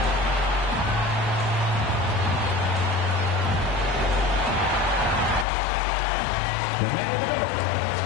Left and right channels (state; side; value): drops out; right; at 5.5 s